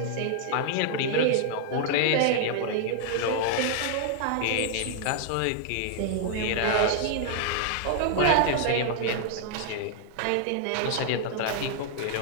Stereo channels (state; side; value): different; both; correlation -0.01